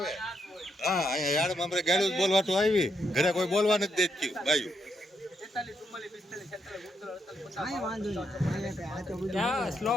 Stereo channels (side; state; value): both; normal; correlation 0.78